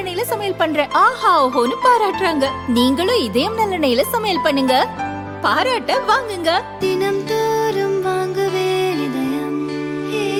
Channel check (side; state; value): both; identical; correlation 1.00